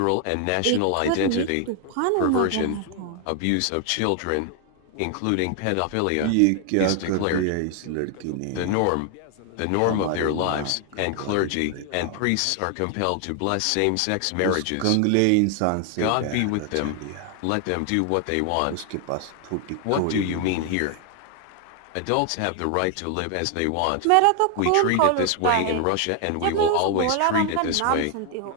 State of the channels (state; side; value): different; both; correlation 0.00